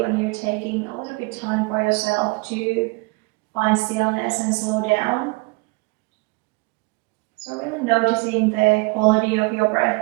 when you're taking a little bit time for yourself to find stillness and slow down. So really noticing the quality of your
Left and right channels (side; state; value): left; quieter; 27.3 dB